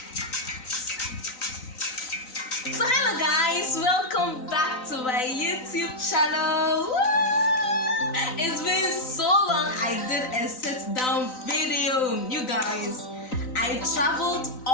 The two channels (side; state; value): right; late; 3.9 ms